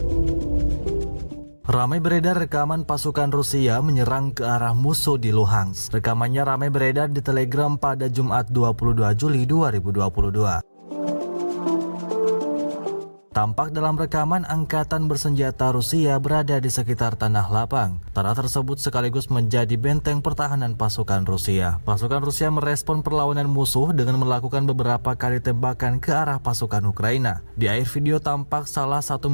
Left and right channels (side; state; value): both; inverted; correlation -1.00